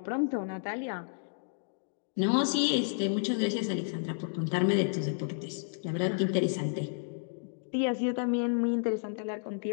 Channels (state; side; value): silent; right; digital silence